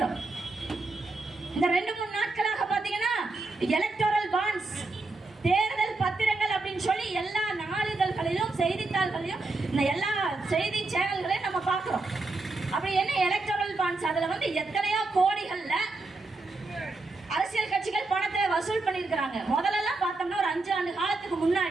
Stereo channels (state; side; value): quieter; left; 3.4 dB